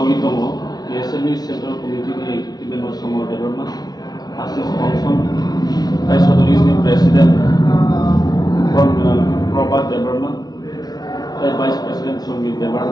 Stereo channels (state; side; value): late; right; 0.19 ms